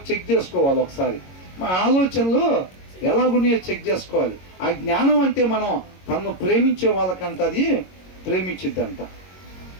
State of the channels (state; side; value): late; right; 22 ms